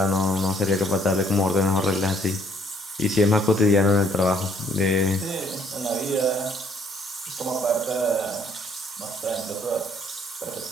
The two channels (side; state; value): both; normal; correlation 0.64